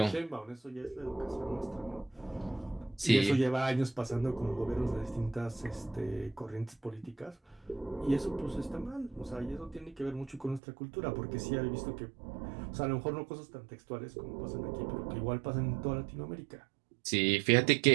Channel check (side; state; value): left; drops out; at 10.6 s